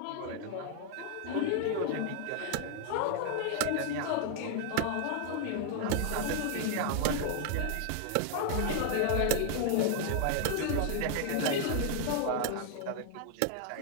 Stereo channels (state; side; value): different; both; correlation 0.00